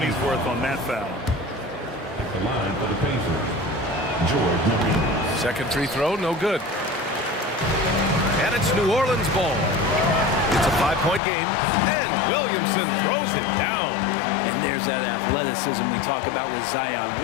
worth on that foul. At the line for the Pacers, George Marie. Second free throw, no good. And it's New Orleans ball. It's a 5-point game, and Williamson throws it down. And there's that athleticism we talk about with Zion.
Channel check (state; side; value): drops out; right; at 11.2 s